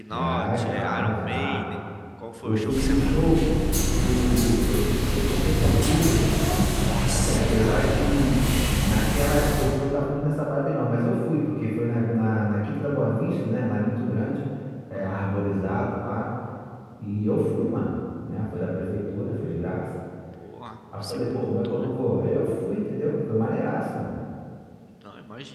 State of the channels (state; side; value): identical; both; correlation 1.00